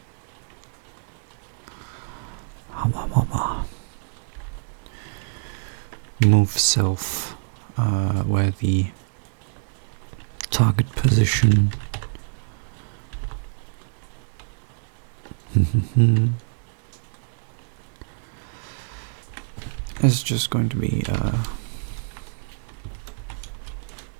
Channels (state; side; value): silent; left; 61 dB below the other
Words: move self where the target position is just going to be